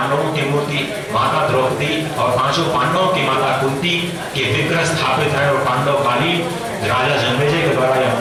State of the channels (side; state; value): both; identical; correlation 1.00